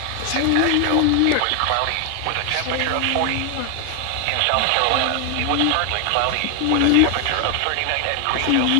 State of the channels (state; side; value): different; both; correlation 0.00